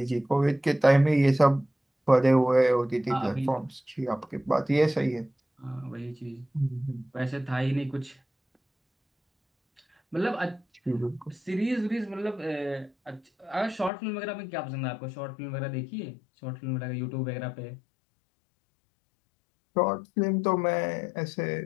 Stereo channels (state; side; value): drops out; right; at 13.9 s